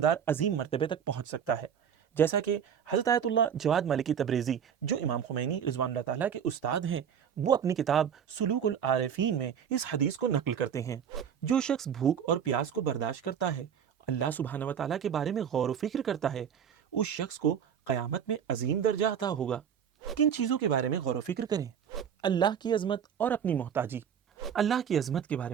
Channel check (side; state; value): left; quieter; 8.2 dB